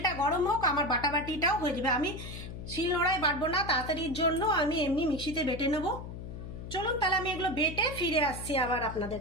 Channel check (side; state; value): left; noise; hum, 10 dB below the sound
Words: গরম হোক, আমার বাটাবাটিটাও হয়ে যাবে। আমি শিলনোড়ায় বাটবো না, তাড়াতাড়ির জন্য আমি এমনি মিক্সিতে বেটে নেব। চলুন তাহলে আমি এগুলো বেটে ফিরে আসছি আবার